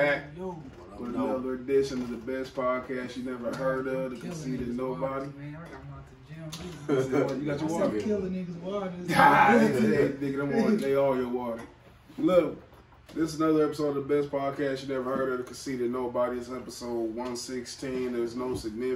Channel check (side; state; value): both; identical; correlation 1.00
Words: with another edition of the best podcast you never heard of, The Conceited Knowbody. You got your water? Killing niggas' water. They all your water. Look, this is another episode of the best podcast you never heard of, The Conceited Knowbody. It's episode 116. There's no